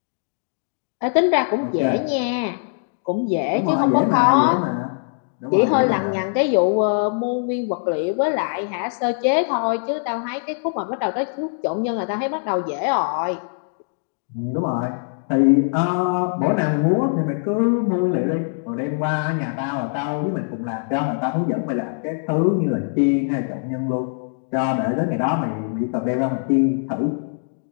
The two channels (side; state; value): right; silent; digital silence